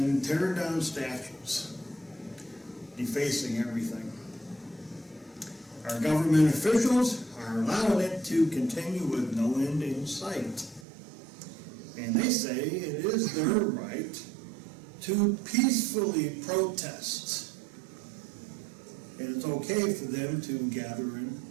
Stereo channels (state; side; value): drops out; left; at 10.9 s